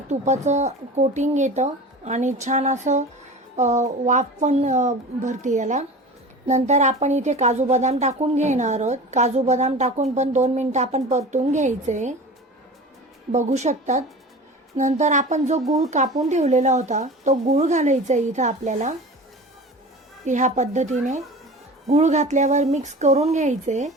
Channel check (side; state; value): both; normal; correlation 0.36